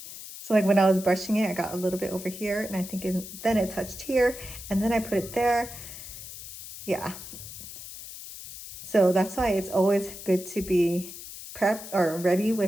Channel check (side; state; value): left; noise; hiss, 12 dB below the sound